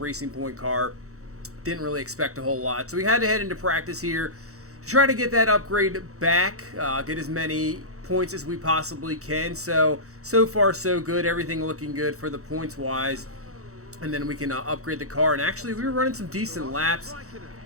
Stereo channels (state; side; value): late; left; 0.65 ms